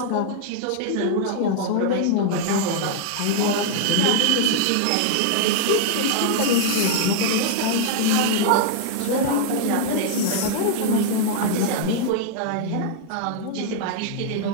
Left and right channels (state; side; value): different; both; correlation -0.01